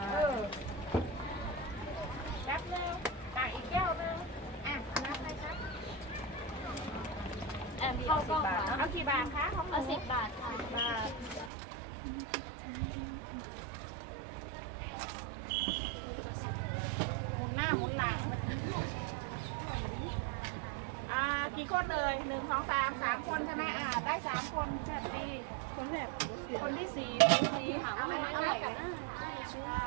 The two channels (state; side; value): drops out; left; at 11.5 s